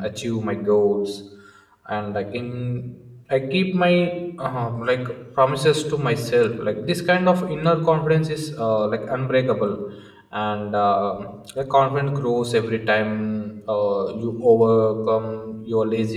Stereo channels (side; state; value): both; identical; correlation 1.00